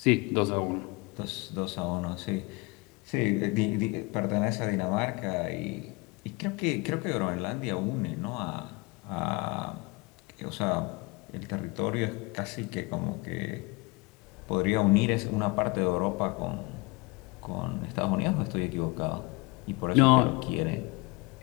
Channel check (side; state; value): right; quieter; 26.4 dB